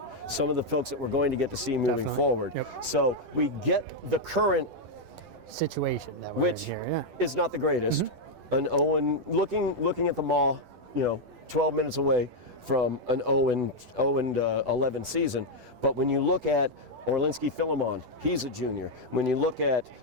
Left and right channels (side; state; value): left; late; 10 ms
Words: some of the folks that we're going to get to see moving forward. Yep. So we get the current situation that which is not the greatest. An Owen looking at the Maw, 12 minutes away from an 0-11 season. But when you look at Orlinski Philemon, he's a junior. When you look at